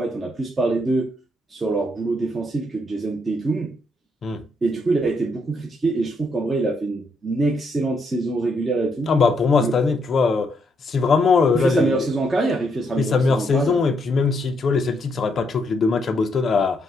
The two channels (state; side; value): normal; both; correlation 0.76